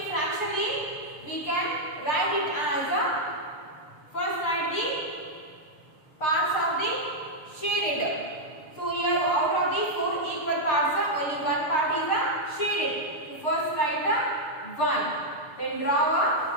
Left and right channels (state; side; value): late; right; 6.6 ms